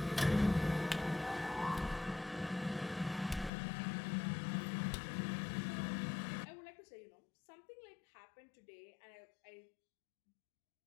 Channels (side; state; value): right; drops out; at 3.5 s